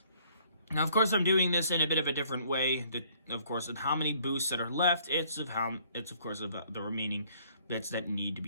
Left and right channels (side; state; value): both; inverted; correlation -0.60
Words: Now, of course, I'm doing this in a bit of a different way. Of course, of how many boosts that are left, it's of course of the remaining bits that need to